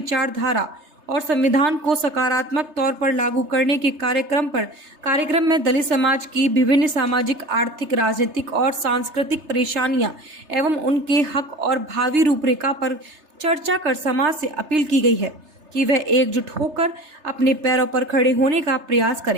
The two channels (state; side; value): late; left; 3.3 ms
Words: और संविधान को सकारात्मक तौर पर लागू करने के कार्यक्रम में दलित समाज की विभिन्न सामाजिक, आर्थिक, राजनीतिक और सांस्कृतिक परेशानियां एवं उनके हक और भावी रूपरेखा पर चर्चा कर समाज से अपील की गई है कि वह एकजुट होकर अपने पैरों पर खड़े होने का प्रयास